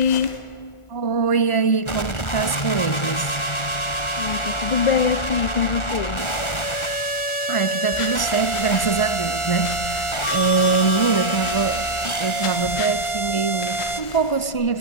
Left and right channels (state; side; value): late; right; 1.3 ms